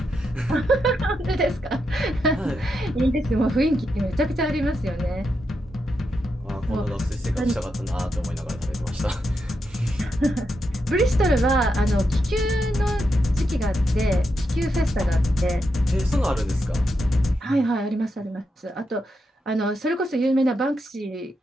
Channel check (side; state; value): both; normal; correlation 0.84